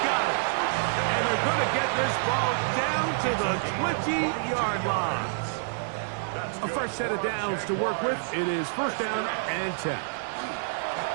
got it. And they're going to get this ball down to the 20-yard line. A fresh set of downs to work with. It is first down and 10.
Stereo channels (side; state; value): left; silent; digital silence